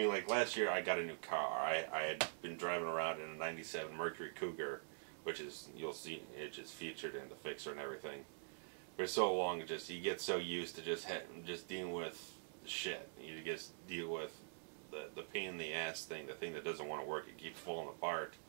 like last year I got a new car. I had been driving around in a 97 Mercury Cougar, which is, you'll see, it's just featured in the fixer and everything. For so long, you get so used to just dealing with shit. You just deal with the pain in the ass thing, the thing that doesn't want to work, it keeps falling apart.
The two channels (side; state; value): left; silent; digital silence